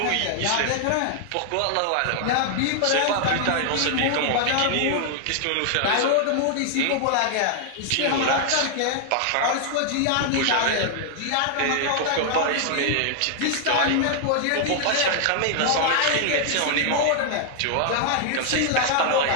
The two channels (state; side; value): different; both; correlation 0.00